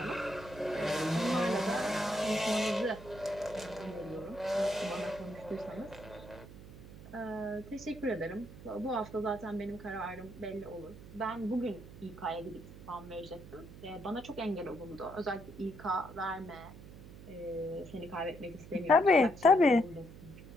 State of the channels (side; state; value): right; noise; hum, 16 dB below the sound